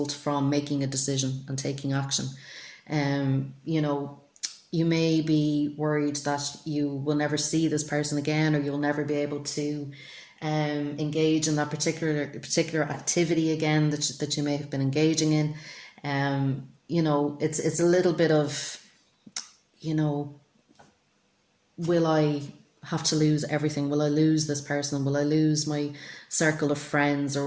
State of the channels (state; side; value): identical; both; correlation 1.00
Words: from making a decision and taking action. You know, you may be worried that you will never see this person again, or you'll never be able to engage in that particular activity again that you may have been engaging in. You know, it's a little bit of, you know, will I have to lose everything? Will I lose this person? Will I lose my circle of friends